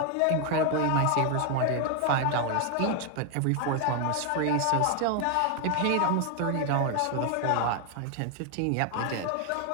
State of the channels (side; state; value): both; different; correlation 0.01